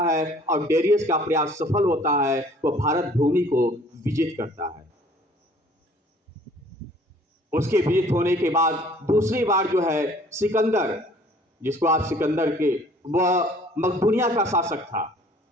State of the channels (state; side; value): normal; both; correlation 0.55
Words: है और डेरियस का प्रयास सफल होता है, वह भारत भूमि को विजित करता है। उसके विजित होने के बाद दूसरी बार जो है सिकंदर, जिसको आप सिकंदर के, वह मकदूनिया का शासक था।